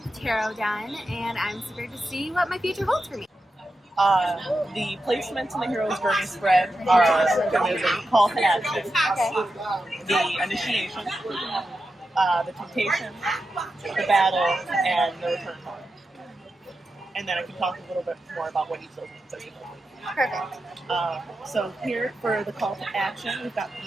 the tarot done, and I'm super to see what my future holds for me. The placements in the Hero's Journey spread are the call to action, the initiation, the temptation, the battle, and the return home. And then I can talk a little bit more about what each of those means. Perfect. So here for the call to action, we've got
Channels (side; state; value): both; normal; correlation 0.89